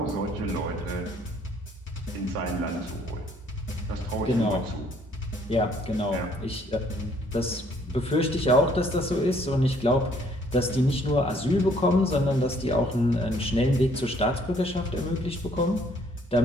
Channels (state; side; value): normal; both; correlation 0.63